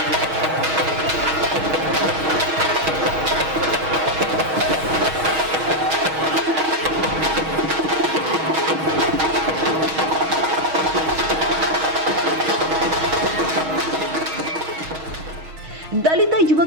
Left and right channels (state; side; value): late; left; 6.3 ms